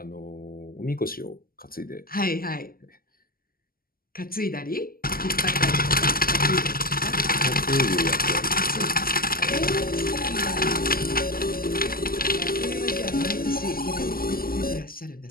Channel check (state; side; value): late; right; 0.42 ms